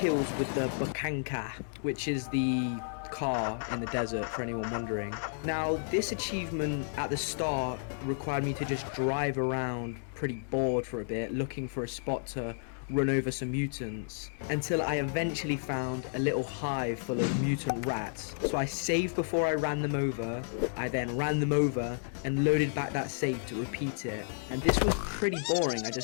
with the Bukanka, which is the car in the desert, for anyone wondering. Now, this achievement at the start required me to just drive around pretty bored for a bit, looking for a spot to run over some mutants, until I eventually found a little hive full of mutant rats. So I saved before I ran them over, I then ran them over and loaded back that save to repeat it. And this was pretty boring, I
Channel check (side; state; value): right; silent; 57 dB below the other